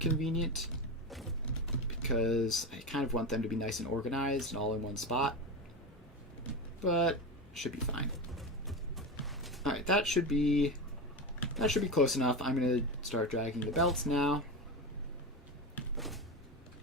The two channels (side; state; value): both; normal; correlation 0.21